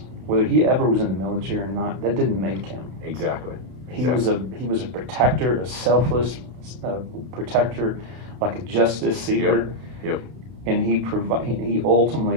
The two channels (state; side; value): late; left; 31 ms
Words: whether he ever was in the military or not, that didn't make him. Exactly. He was a protector, a selfless protector, like a justice seeker. Yep. And he